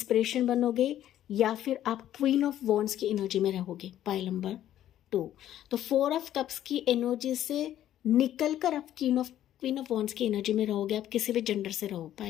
बनोगे, या फिर आप क्वीन ऑफ वॉन्ड्स की एनर्जी में रहोगे पायल नंबर 2। तो 4 ऑफ कप्स की एनर्जी से निकल कर आप क्वीन ऑफ वॉन्ड्स की एनर्जी में रहोगे। आप किसी भी जेंडर से रहो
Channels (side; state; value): right; quieter; 12.0 dB